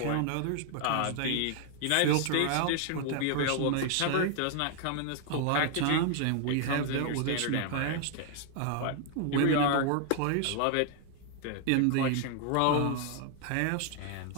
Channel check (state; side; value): different; both; correlation 0.00